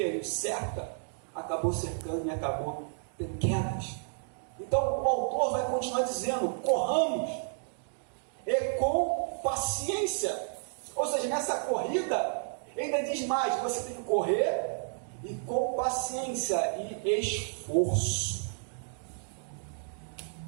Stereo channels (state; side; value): silent; left; digital silence